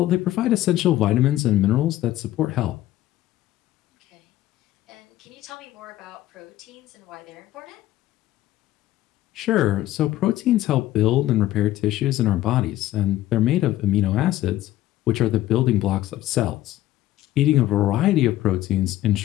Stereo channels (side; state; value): right; quieter; 14.6 dB